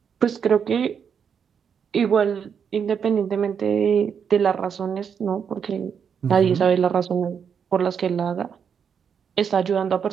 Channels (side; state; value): left; quieter; 7.2 dB